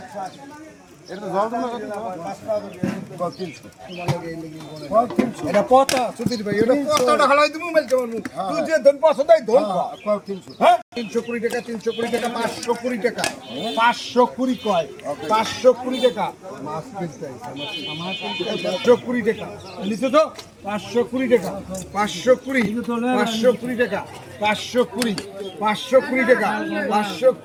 এটা পচা সুধীর ভাই এটা পচাটা খালাই তুমি মেলতে পারবো তুই যে ধন পচা তাই ধন 320 টাকা 320 টাকা 520 টাকা 520 কয় 520 টাকা মাছ কিনতে আমার 520 টাকা নিছো তো 520 টাকা 520 টাকা 520 টাকা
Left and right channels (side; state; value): both; identical; correlation 1.00